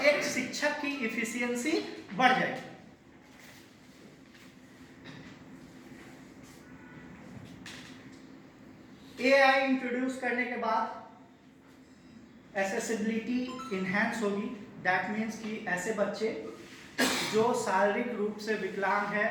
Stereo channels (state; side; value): identical; both; correlation 1.00